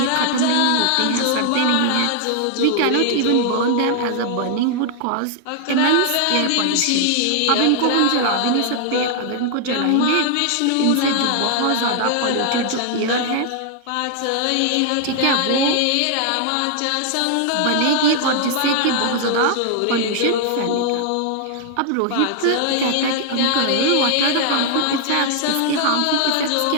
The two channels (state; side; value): different; both; correlation 0.00